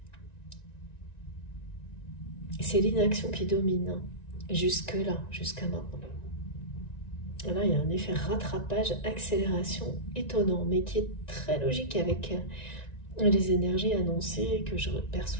C'est l'inaction qui domine, hein, jusque-là, jusqu'à maintenant. Là, il y a un effet rattrapage, accélération étonnant, mais qui est très logique avec les énergies annoncées que je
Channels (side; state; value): right; late; 1.9 ms